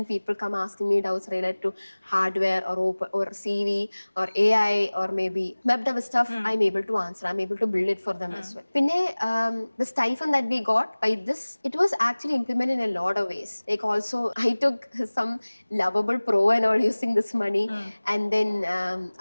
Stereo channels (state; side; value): inverted; both; correlation -1.00